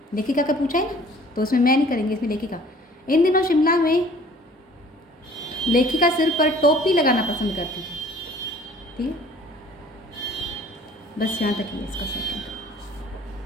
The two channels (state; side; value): normal; both; correlation 0.52